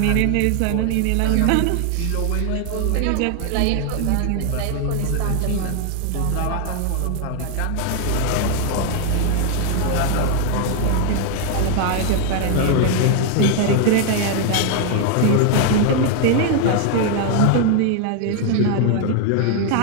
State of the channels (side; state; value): both; different; correlation 0.00